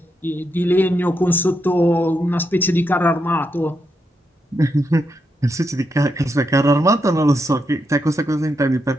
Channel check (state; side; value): normal; both; correlation 0.82